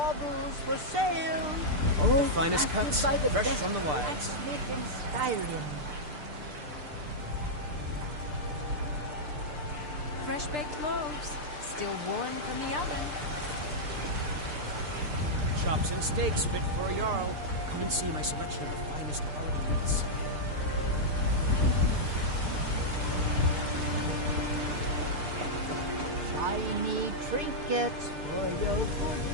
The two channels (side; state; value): left; late; 6.7 ms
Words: for sale, all The finest crafted cuts, by the fresh best from the wilds. blacksmith in Skyrim. Fresh baked loaves, still warm from the oven. Chops and steaks fit for a jarl. Come and see my selection of the finest quality meats. Shiny trinkets for your good